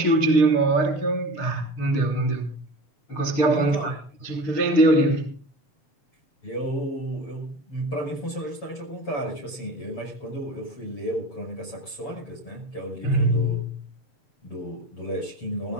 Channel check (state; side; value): late; right; 7.0 ms